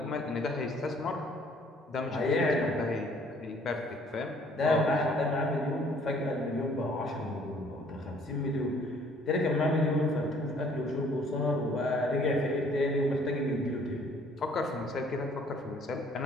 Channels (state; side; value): normal; both; correlation 0.59